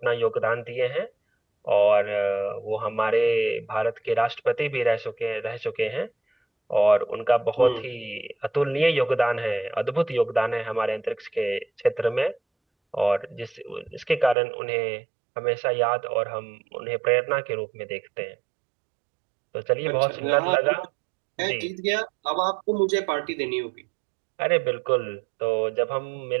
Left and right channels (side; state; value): left; drops out; at 14.4 s